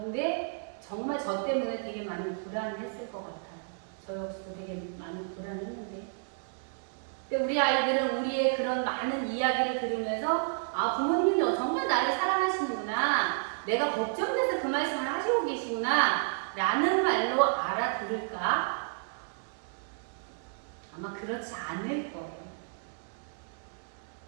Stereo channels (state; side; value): silent; left; 57 dB below the other